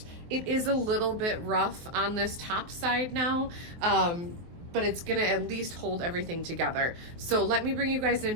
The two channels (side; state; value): left; late; 23 ms